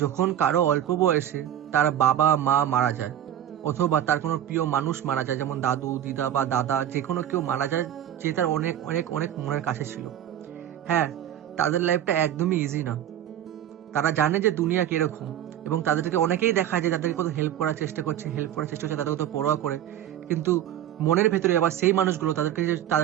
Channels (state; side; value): quieter; left; 11.1 dB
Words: যখন কারো অল্প বয়সে তার বাবা মা মারা যায়, অথবা তার কোনো প্রিয় মানুষ মারা যায়, যেমন দাদু দিদা বা দাদা, যে কোনো কেউ মারা যায় যে তার অনেক অনেক অনেক মনের কাছে ছিল। হ্যাঁ, তাদের লাইফটা একদমই ইজি না। তারা জানে যে দুনিয়া কিরকম, এবং তাদেরকে অনেকেই দেখা যায় যাদেরকে কত হেল্প করার চেষ্টা করছে, তাদের কত পরোয়া করে, কিন্তু মনের ভেতরে আবার সেই মানুষগুলো তাদেরকে